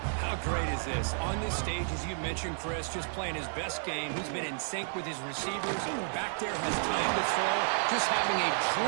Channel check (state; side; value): silent; left; 57 dB below the other